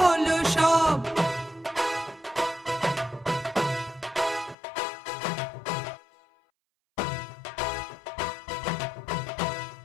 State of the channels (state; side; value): drops out; right; at 4.5 s